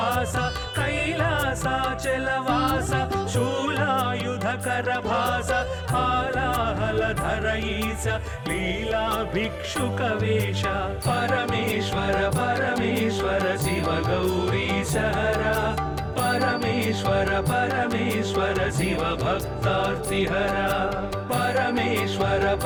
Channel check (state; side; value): identical; both; correlation 1.00